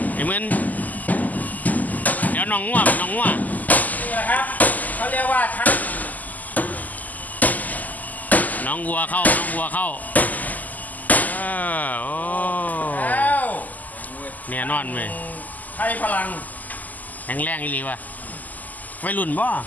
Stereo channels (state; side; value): late; right; 0.081 ms